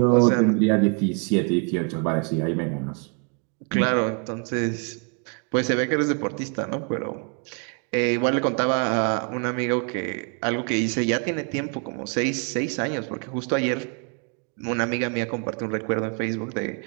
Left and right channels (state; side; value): quieter; left; 38.9 dB